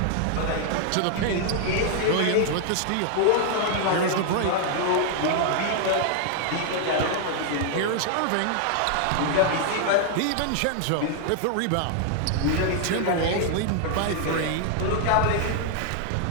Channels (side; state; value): both; different; correlation 0.00